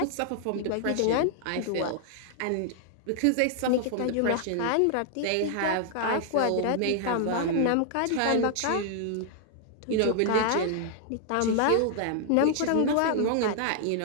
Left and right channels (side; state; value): both; different; correlation -0.01